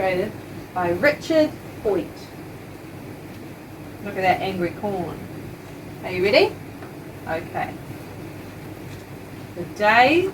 by Richard Hoyt. Look at that angry corn. Are you ready? Okay. The day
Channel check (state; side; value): identical; both; correlation 1.00